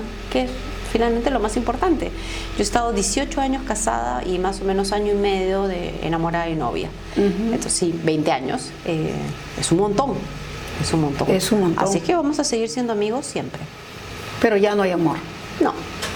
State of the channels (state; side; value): identical; both; correlation 1.00